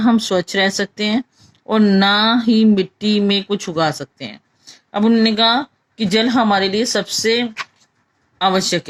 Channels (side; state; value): both; identical; correlation 1.00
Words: स्वच्छ रह सकते हैं और ना ही मिट्टी में कुछ उगा सकते हैं। अब उन्होंने कहा कि जल हमारे लिए सबसे आवश्यक